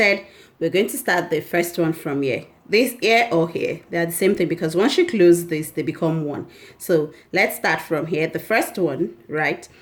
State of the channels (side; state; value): both; identical; correlation 1.00